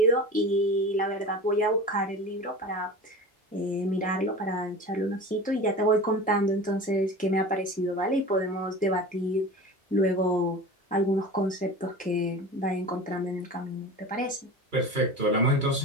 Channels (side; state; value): both; normal; correlation 0.33